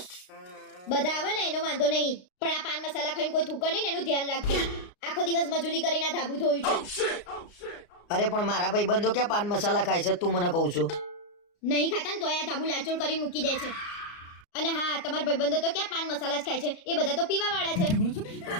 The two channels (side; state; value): right; late; 33 ms